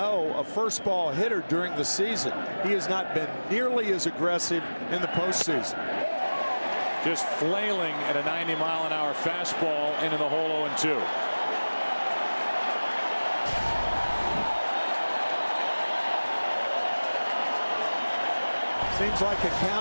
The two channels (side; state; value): both; inverted; correlation -1.00